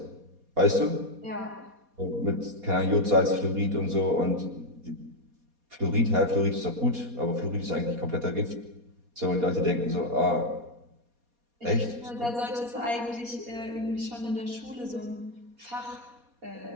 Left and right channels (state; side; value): late; left; 4.2 ms